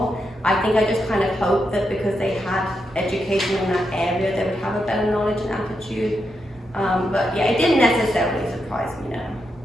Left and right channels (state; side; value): normal; both; correlation 0.84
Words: I think I just kind of hoped that because they had education in that area, they would have a better knowledge and attitude. But yeah, it didn't necessarily surprise me, no.